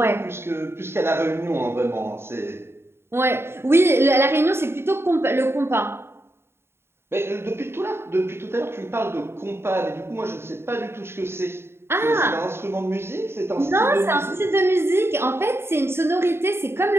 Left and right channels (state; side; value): late; left; 0.12 ms